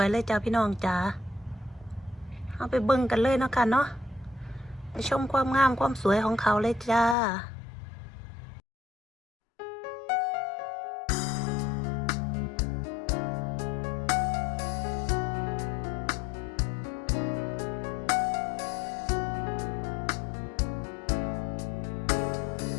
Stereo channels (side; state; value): right; drops out; at 7.2 s